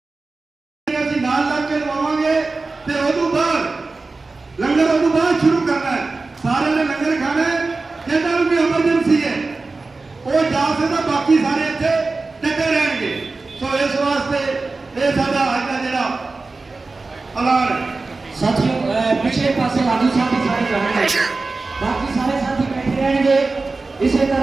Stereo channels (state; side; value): quieter; left; 3.7 dB